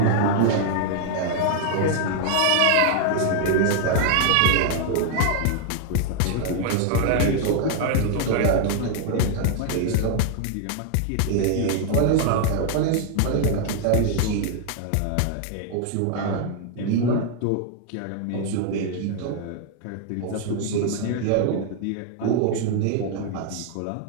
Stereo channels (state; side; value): different; both; correlation 0.00